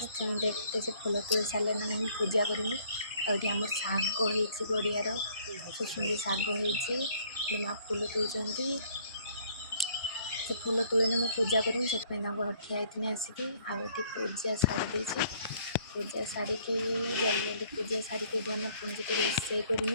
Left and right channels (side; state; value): both; inverted; correlation -0.61